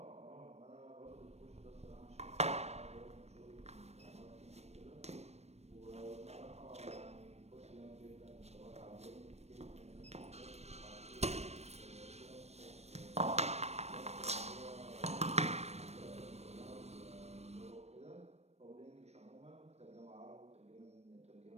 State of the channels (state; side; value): late; left; 0.31 ms